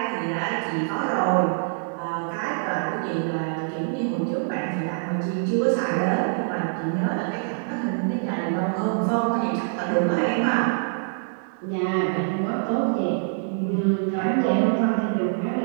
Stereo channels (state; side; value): silent; left; digital silence